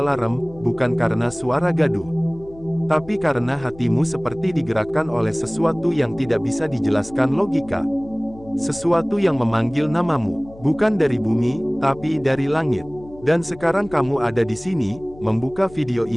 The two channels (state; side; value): noise; left; hum, 20 dB below the sound